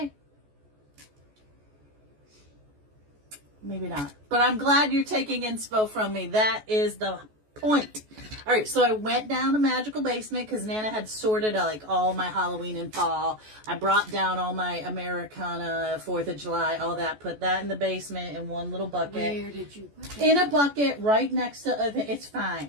Maybe not. But I'm glad you're taking inspo from me. That is the point. All right, so I went down to Magical Basement because Nana had sorted like all my Halloween and fall. I brought down all my Americana, 4th of July, all that. Put that in the basement in one little bucket. Where did you put it? In a bucket right next to, it's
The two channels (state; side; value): late; left; 14 ms